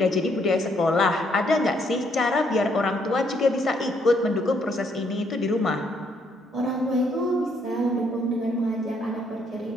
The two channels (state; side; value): normal; both; correlation 0.71